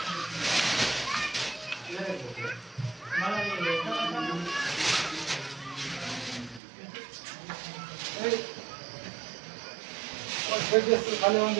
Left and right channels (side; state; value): left; drops out; at 6.6 s